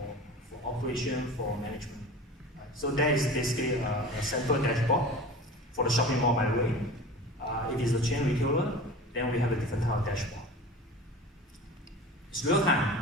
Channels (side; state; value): both; normal; correlation 0.36